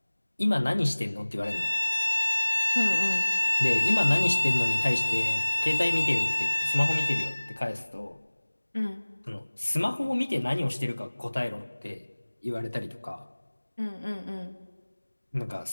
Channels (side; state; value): both; inverted; correlation -1.00